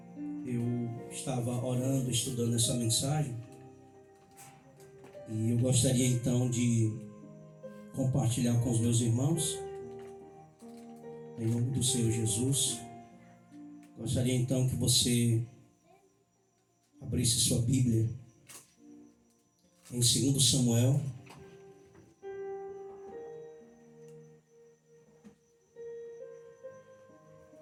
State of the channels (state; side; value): identical; both; correlation 1.00